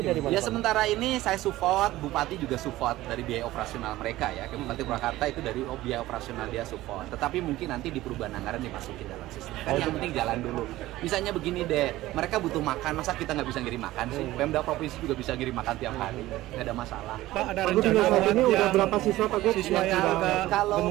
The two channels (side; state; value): left; quieter; 16.5 dB